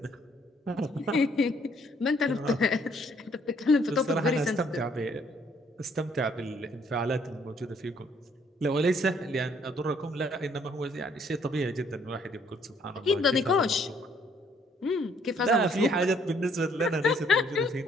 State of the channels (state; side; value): normal; both; correlation 0.65